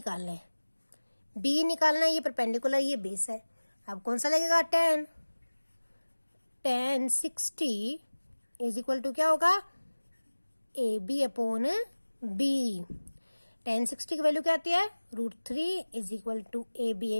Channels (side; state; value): both; inverted; correlation -1.00